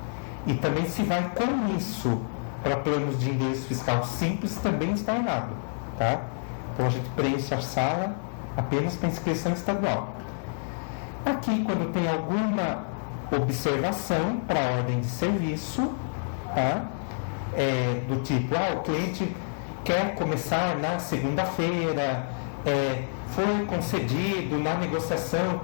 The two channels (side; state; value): right; silent; digital silence